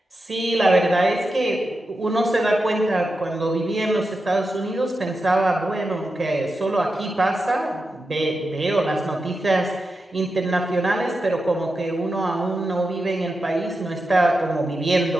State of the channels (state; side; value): normal; both; correlation 0.89